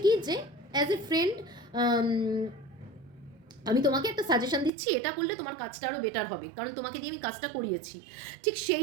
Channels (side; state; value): left; drops out; at 4.7 s